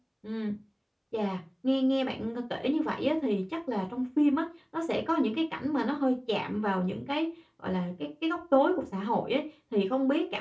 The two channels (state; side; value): identical; both; correlation 1.00